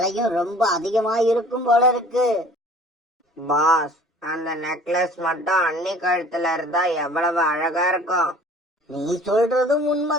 ரொம்ப அதிகமா இருக்கும் போல இருக்கு. பாஸ், அந்த நெக்லஸ் மட்டும் அண்ணி கழுத்துல இருந்தா எவ்வளவு அழகா இருக்கும். நீ சொல்றதும்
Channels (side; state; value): both; normal; correlation 0.49